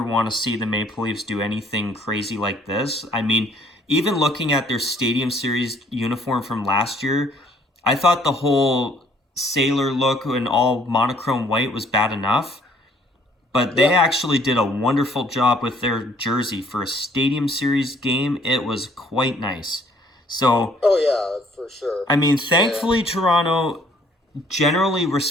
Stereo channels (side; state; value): both; normal; correlation 0.61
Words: want to see the Maple Leafs do anything crazy like this. I mean, even looking at their Stadium Series uniform from last year, I thought the whole sailor look and all monochrome white was bad enough. But they Yeah. actually did a wonderful job with their jersey for a Stadium Series game. It was quite nice. So, Oh, yeah, for sure. I mean, And, thankfully, Toronto generally